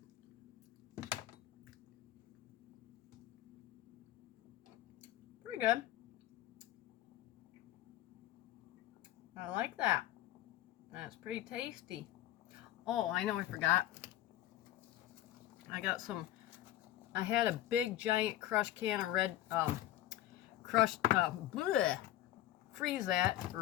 pretty good. I like that. That's pretty tasty. Oh, I know I forgot. I got some, I had a big giant crushed can of red, freeze that,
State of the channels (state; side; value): quieter; right; 13.8 dB